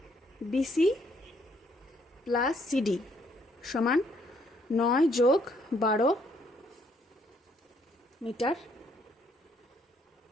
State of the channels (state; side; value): normal; both; correlation 0.68